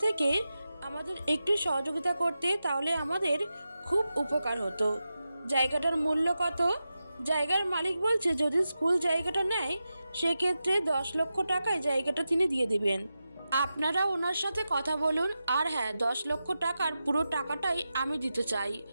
থেকে আমাদের একটু সহযোগিতা করতে তাহলে আমাদের খুব উপকার হতো। জায়গাটার মূল্য কত? জায়গার মালিক বলছে যদি স্কুল জায়গাটা নেয় সেক্ষেত্রে 10 লক্ষ টাকায় জায়গাটা তিনি দিয়ে দিবেন। আপনারা ওনার সাথে কথা বলুন। আর হ্যাঁ, 10 লক্ষ টাকার পুরো টাকাটাই আমি দিতে চাই।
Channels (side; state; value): both; inverted; correlation -0.91